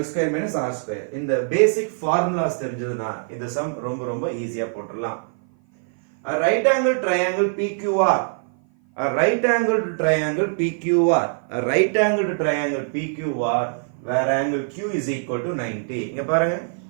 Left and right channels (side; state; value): left; silent; 56 dB below the other